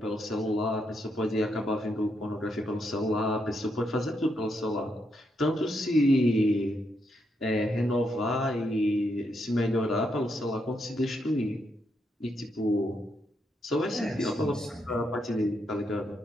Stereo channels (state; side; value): normal; both; correlation 0.79